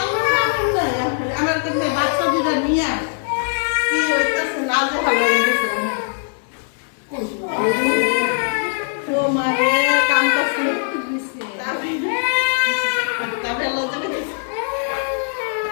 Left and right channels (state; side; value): silent; right; 63 dB below the other